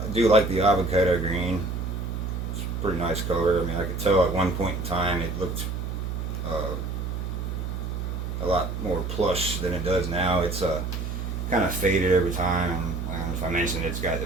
do like the avocado green. It's a pretty nice color. I mean, I could tell at one point in time it looked a lot more plush than it does now. It's kind of faded over time. I don't know if I mentioned it's got a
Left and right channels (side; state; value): right; noise; hum, 4 dB below the sound